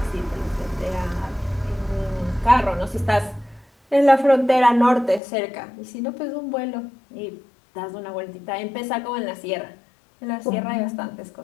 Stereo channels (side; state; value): right; drops out; at 5.2 s